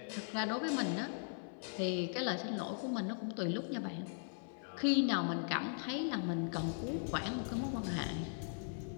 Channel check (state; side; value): silent; right; 52 dB below the other